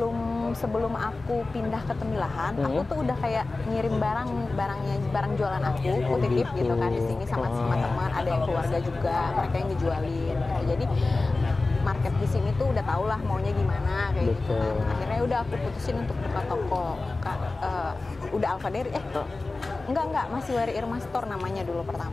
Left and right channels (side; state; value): right; quieter; 3.4 dB